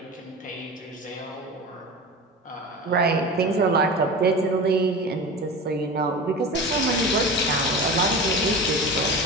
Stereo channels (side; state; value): both; normal; correlation 0.31